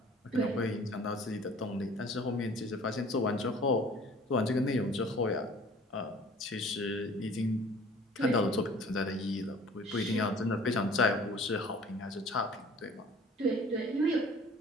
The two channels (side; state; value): both; normal; correlation 0.50